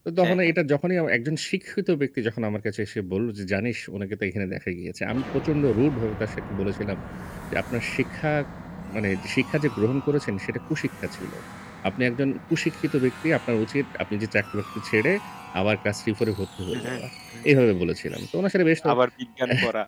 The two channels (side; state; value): both; identical; correlation 1.00